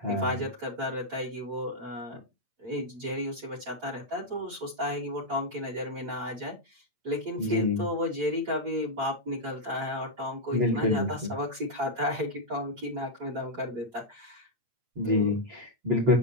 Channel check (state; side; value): late; left; 8.6 ms